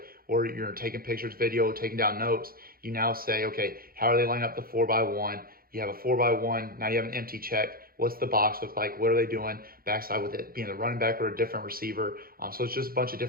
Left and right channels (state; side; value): late; left; 0.43 ms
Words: or you're taking pictures, video, taking down notes. You now say, okay, how are they lining up the 4x1? You have a 4x1, now you have an empty check. What's the box look like? What are they doing? Backside with it being the running back or a different receiver. So it's just a bunch of